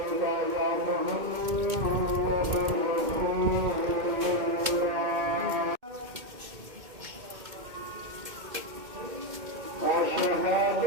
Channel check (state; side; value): late; left; 2.2 ms